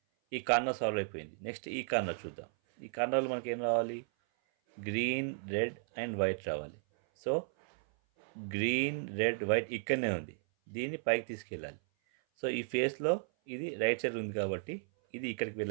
ఈ కార్నర్ సాల్వ్ అయిపోయింది. నెక్స్ట్ ఈ కార్నర్ చూద్దాం. ఈ కార్నర్లో మనకి ఏం రావాలి? గ్రీన్, రెడ్ అండ్ వైట్ రావాలి. సో గ్రీన్, రెడ్, వైట్ ఇక్కడనే ఉంది. దీన్ని పైకి తీసుకెళ్ళాలి. సో ఈ ఫేస్లో ఇది రైట్ సైడ్ ఉంది కాబట్టి ఇది ఇక్కడికి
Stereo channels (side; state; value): left; silent; 55 dB below the other